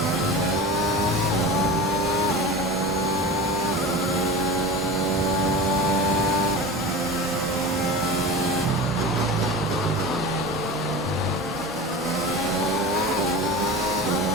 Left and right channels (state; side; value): normal; both; correlation 0.31